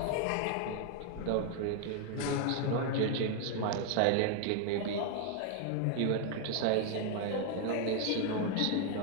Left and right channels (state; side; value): different; both; correlation 0.00